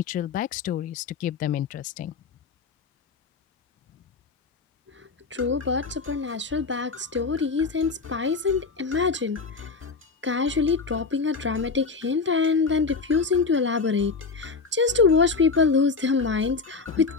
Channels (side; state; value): right; quieter; 4.6 dB